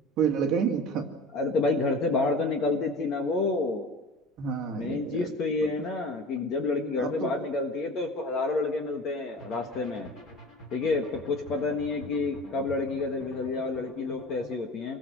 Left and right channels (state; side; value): normal; both; correlation 0.37